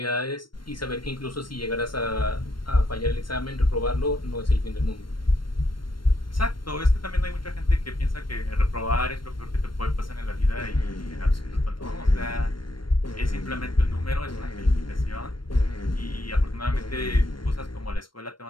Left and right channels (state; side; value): late; right; 0.72 ms